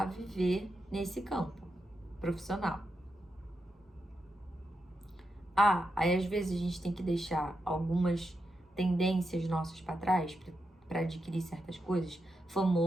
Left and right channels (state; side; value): normal; both; correlation 0.86